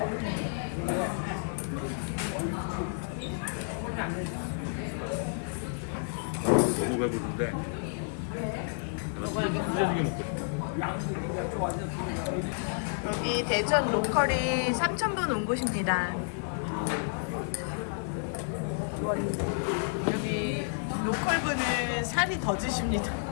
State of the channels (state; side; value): silent; right; digital silence